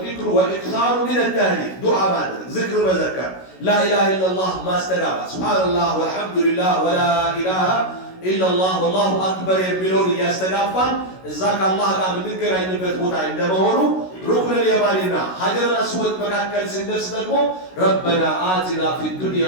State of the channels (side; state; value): right; late; 16 ms